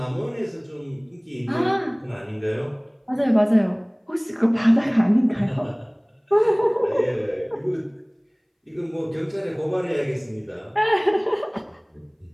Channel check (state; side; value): identical; both; correlation 1.00